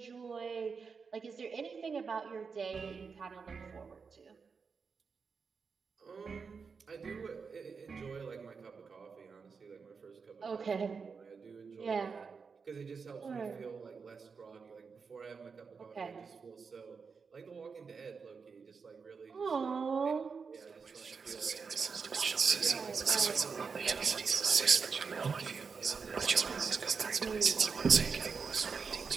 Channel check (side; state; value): left; quieter; 5.4 dB